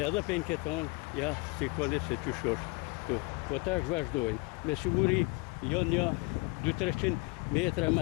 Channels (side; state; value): right; quieter; 26.4 dB